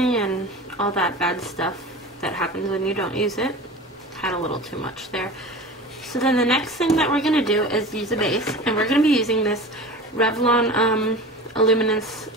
and all that bad stuff that happens when you don't use it. Had a little too much there. So then the next thing that we're going to do is use a base, and we're going to be using this Revlon Illuminance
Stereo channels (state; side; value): normal; both; correlation 0.34